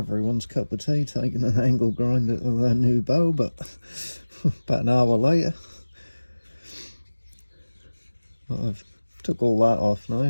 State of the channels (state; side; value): inverted; both; correlation -1.00